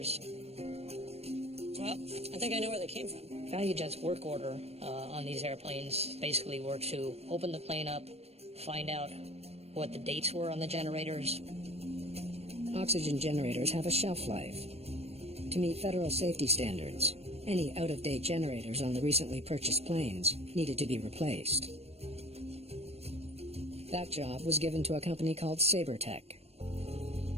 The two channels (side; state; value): left; late; 0.30 ms